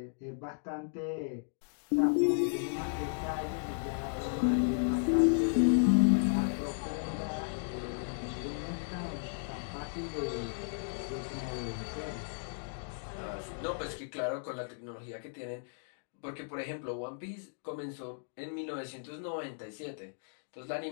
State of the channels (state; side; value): silent; right; digital silence